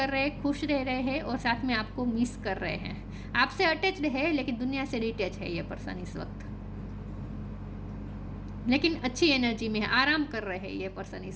रहे हैं, खुश रह रहे हैं, और साथ में आपको मिस कर रहे हैं। आपसे अटैच्ड है लेकिन दुनिया से डिटेच है ये पर्सन इस वक्त, लेकिन अच्छी एनर्जी में है, आराम कर रहे हैं ये पर्सन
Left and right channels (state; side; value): identical; both; correlation 1.00